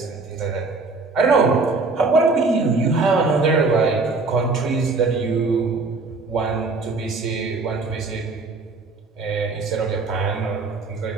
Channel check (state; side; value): quieter; left; 3.8 dB